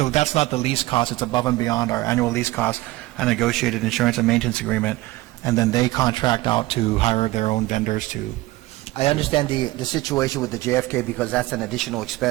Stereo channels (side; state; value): left; quieter; 19.1 dB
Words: that's not the lease cost. It's above and beyond our annual lease cost, a negotiated insurance and maintenance agreement, and then they contract out to hire their own vendors to. I understand the situation with the JFK because that's an additional